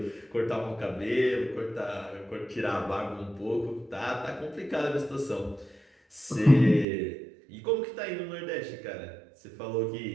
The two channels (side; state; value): left; drops out; at 6.9 s